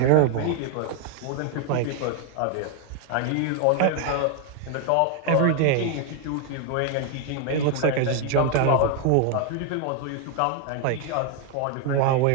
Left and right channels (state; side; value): different; both; correlation 0.00